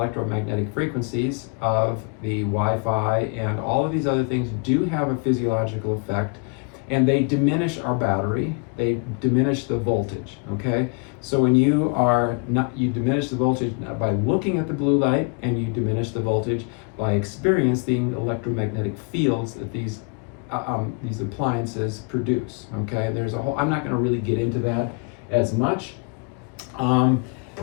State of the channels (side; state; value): right; quieter; 34.8 dB